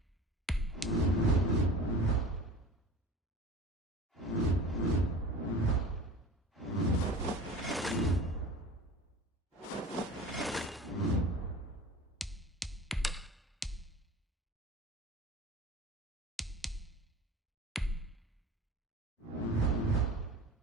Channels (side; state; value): both; normal; correlation 0.38